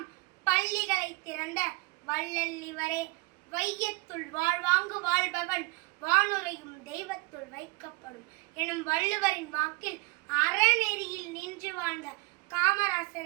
பள்ளிகளை திறந்த வள்ளல் இவரே. வையத்துள் வாழ்வாங்கு வாழ்பவன் வானுரையும் தெய்வத்துள் வைக்கப்படும் எனும் வள்ளுவரின் வாக்கில் அறநெறியில் நின்று வாழ்ந்த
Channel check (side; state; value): left; quieter; 26.4 dB